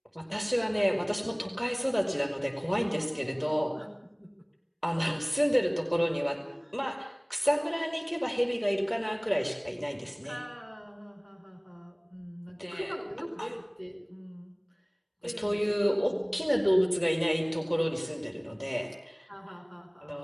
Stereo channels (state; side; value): identical; both; correlation 1.00